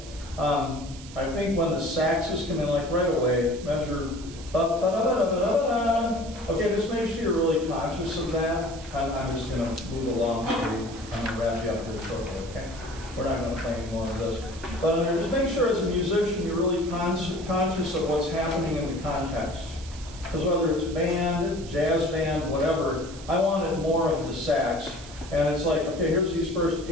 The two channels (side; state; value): right; noise; hiss, 17 dB below the sound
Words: I think when the saxes come in, like right away, measure. Okay, just make sure you're really conscious of that. I'm just going to move along, so I'm going to wrap you up here shortly, okay? We're not going to play any more of this. But just make sure as a musician you're really conscious of what's happening in the context. Because whether it's band, jazz band, whatever, I wanted more of the sax. And it's like, okay, here's these first